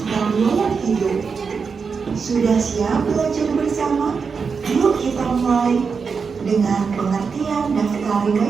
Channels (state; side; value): quieter; left; 5.5 dB